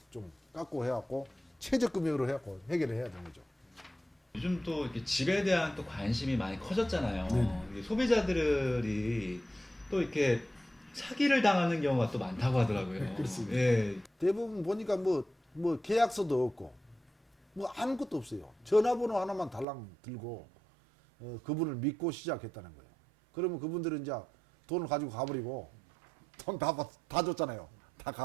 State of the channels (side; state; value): left; drops out; at 19.7 s